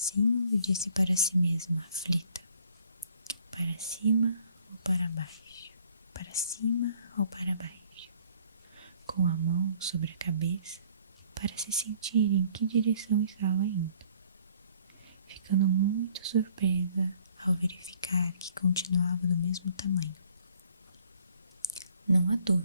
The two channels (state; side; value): inverted; both; correlation -0.59